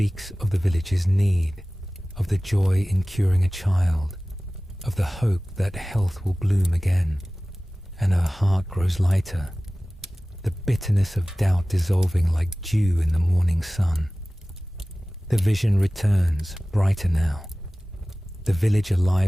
of the village's need, of the joy in curing a child, of the hope that health will bloom again, and her heart grows lighter, the bitterness of doubt dissolving like dew in the morning sun. The vision returns, brighter now, the village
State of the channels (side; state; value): both; normal; correlation 0.97